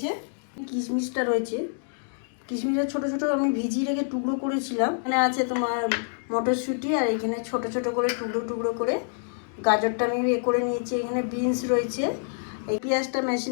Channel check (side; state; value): right; silent; digital silence